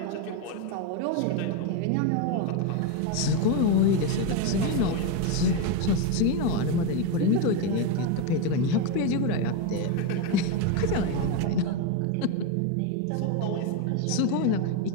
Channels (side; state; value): both; different; correlation 0.03